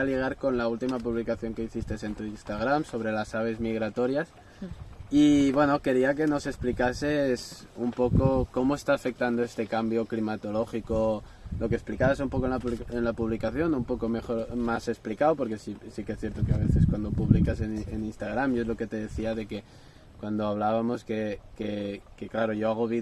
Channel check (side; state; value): both; identical; correlation 1.00